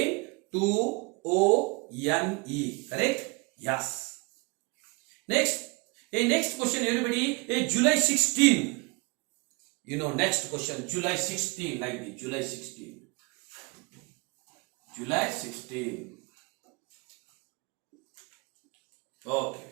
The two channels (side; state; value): left; quieter; 28.5 dB